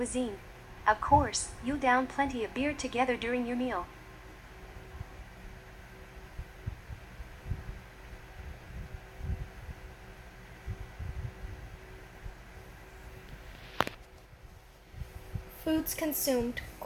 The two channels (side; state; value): both; identical; correlation 1.00